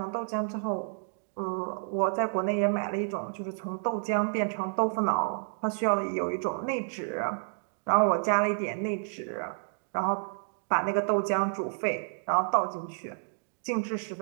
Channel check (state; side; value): silent; left; digital silence